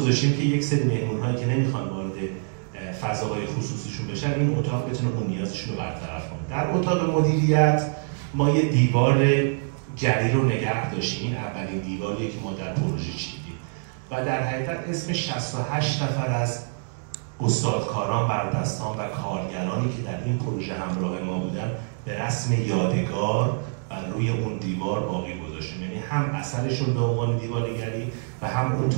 که یک سری مهمون‌هایی که نمیخوان وارد فضاهای خصوصیشون بشن، این اتاق بتونه اون نیازشون رو برطرف کنه. در اتاق مدیریت ما یه دیوار جدید رو نگه داشتیم، این اولین دیواریه که ما در پروژه چیدیم و در حقیقت اسم 68 نفر از استادکاران، بردستان و کارگرانی که در این پروژه همراه ما بودن به رسم یادگار و روی اون دیوار باقی گذاشتیم. یعنی هم اثرشون به عنوان دیوارگری و هم اون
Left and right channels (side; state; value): left; silent; 60 dB below the other